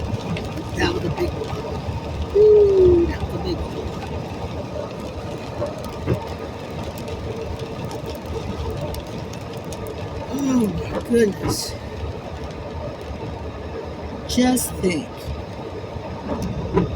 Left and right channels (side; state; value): both; identical; correlation 1.00